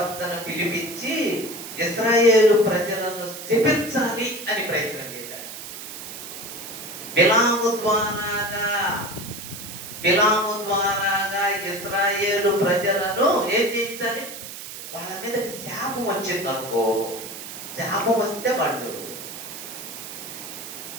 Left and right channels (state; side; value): noise; right; hiss, 10 dB below the sound